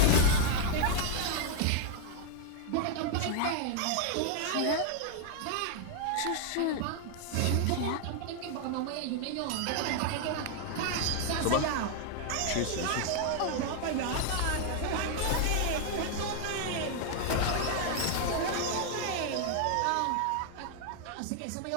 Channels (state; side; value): different; both; correlation 0.00